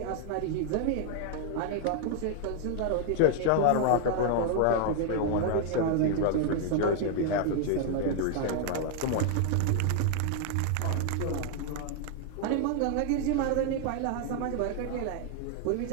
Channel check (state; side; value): different; both; correlation 0.00